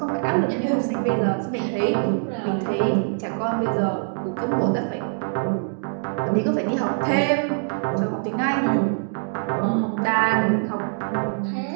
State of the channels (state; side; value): silent; left; digital silence